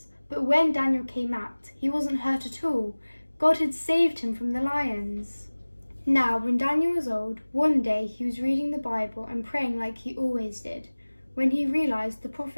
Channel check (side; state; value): both; inverted; correlation -1.00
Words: but when Daniel came out, he wasn't hurt at all. God had saved him from the lions. Now, when Daniel was old, one day he was reading the Bible and praying like he always did, when he realised the